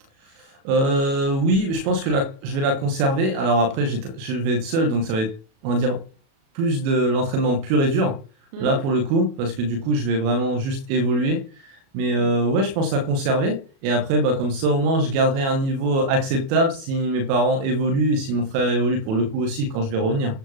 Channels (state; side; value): late; left; 37 ms